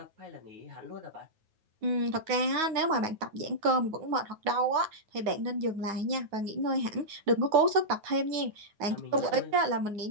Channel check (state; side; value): late; left; 9.4 ms